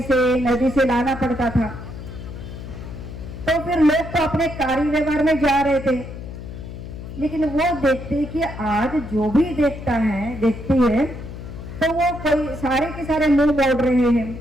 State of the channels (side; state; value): left; noise; hum, 11 dB below the sound